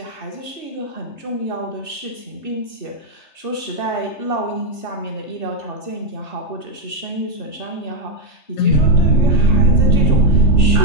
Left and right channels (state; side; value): late; right; 3.3 ms